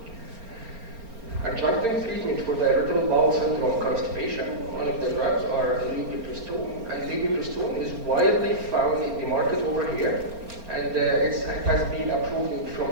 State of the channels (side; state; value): left; late; 4.4 ms